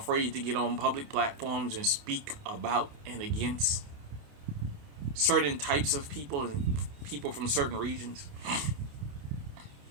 to get on public platforms and speak about and against certain types of people and people from certain regions.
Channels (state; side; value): late; left; 29 ms